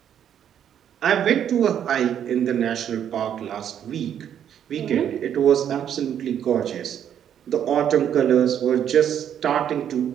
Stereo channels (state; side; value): quieter; left; 9.4 dB